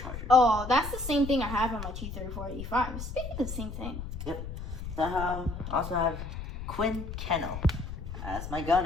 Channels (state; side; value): noise; left; rumble, 8 dB below the sound